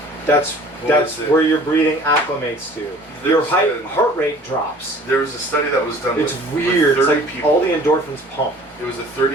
That's where your breathing acclimates to. Your heart rate drops. There was a study that was done. It's with weird. 30 it's like people. all the endorphins pump. It was a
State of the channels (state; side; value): normal; both; correlation 0.49